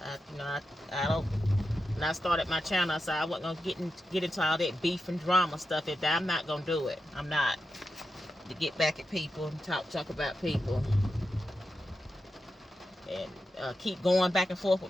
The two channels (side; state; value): both; normal; correlation 0.89